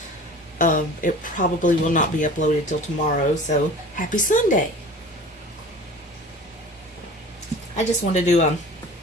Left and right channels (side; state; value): both; normal; correlation 0.40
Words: it probably will not be uploaded till tomorrow, so happy Sunday. I just wanted to do